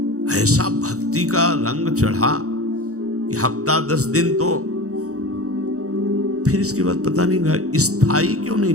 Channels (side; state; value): left; late; 0.65 ms